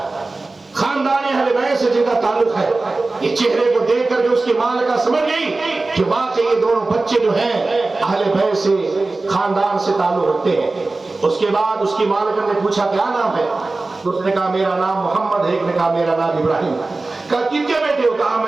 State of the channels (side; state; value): left; quieter; 3.3 dB